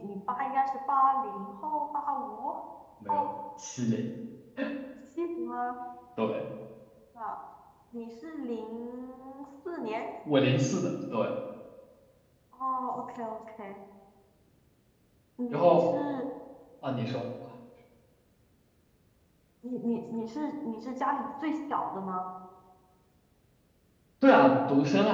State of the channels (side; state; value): both; identical; correlation 1.00